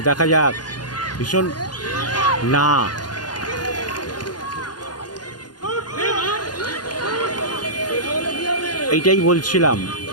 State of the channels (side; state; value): right; late; 0.69 ms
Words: দেখা যাক। ভীষণ না, এইটাই বলছিলাম,